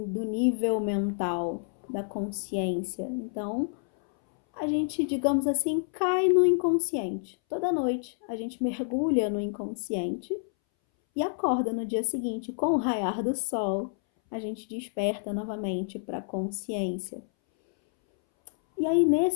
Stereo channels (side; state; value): right; silent; 59 dB below the other